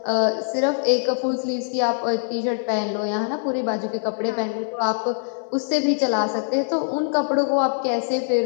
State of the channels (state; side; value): silent; right; digital silence